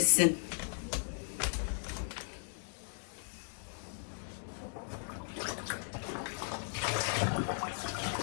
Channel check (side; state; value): right; silent; 53 dB below the other